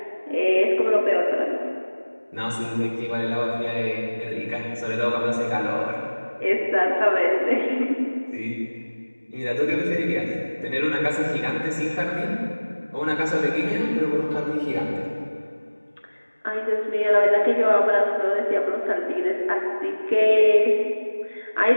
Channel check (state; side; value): inverted; both; correlation -1.00